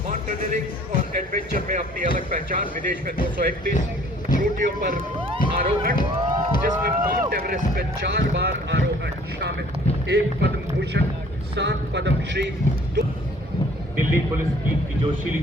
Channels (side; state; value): both; normal; correlation 0.55